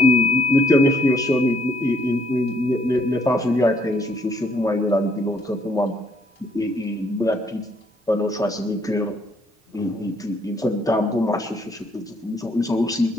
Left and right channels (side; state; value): both; normal; correlation 0.68